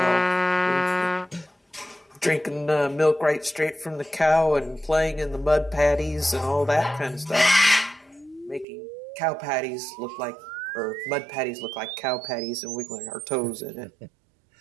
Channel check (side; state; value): left; drops out; at 8.7 s